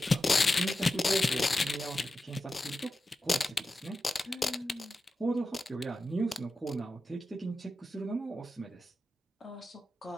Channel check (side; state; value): both; normal; correlation 0.92